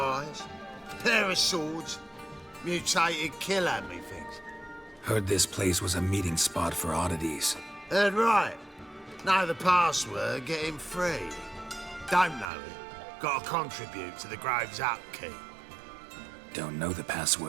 pair of swords, mutated kill at me things. Heard this place was a meeting spot for oddities. Heard right. Know the password, get him free. Don't know it. Gotta contribute to the Grove's upkeep. Don't know the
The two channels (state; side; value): drops out; left; at 12.5 s